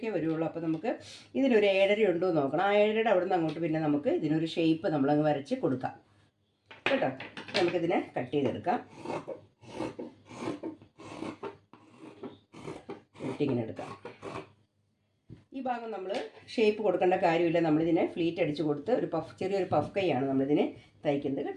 വരുള്ളൂ. അപ്പോൾ നമുക്ക് ഇതിനൊരു 7.5 ഉണ്ടോ എന്ന് നോക്കണം. ആ 7.5 അവിടെ നിന്ന് അങ്ങോട്ട് പിന്നെ നമുക്ക് ഇതിനൊരു ഷേപ്പ് നമ്മളങ്ങ് വരച്ച് കൊടുക്കാം കേട്ടോ. നമുക്കിതിനെ കട്ട് ചെയ്തെടുക്കാം. വെട്ടിങ്ങനെ എടുക്കാം. ഈ ഭാഗം നമ്മൾ ഷേപ്പ് കൊടുക്കേണ്ട കാര്യമില്ല. നമ്മളിതിനെ ഫ്ലീറ്റ് അടിച്ച് കൊടുത്ത് ഒരു ചെറിയൊരു പഫ് കൈയാണ് നമ്മളിതിനെ തയ്ക്കുന്നത്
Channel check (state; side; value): identical; both; correlation 1.00